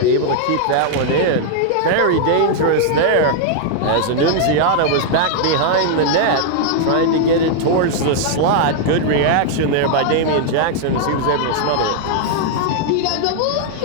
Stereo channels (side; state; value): both; different; correlation -0.01